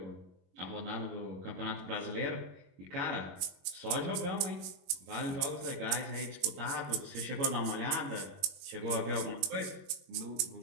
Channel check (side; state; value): left; late; 22 ms